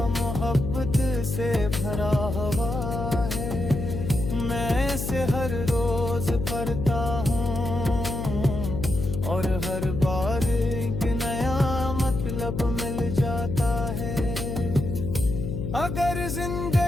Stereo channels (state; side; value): noise; left; hum, 3 dB below the sound